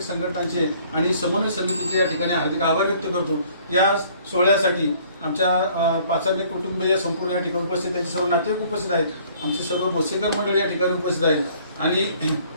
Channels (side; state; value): both; inverted; correlation -0.58